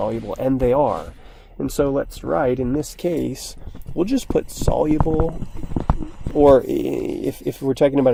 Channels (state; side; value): identical; both; correlation 1.00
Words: and they are. And so let's write, in this case, we'll just put soluble, or if we're talking